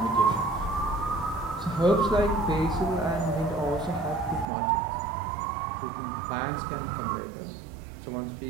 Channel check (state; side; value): drops out; left; at 4.5 s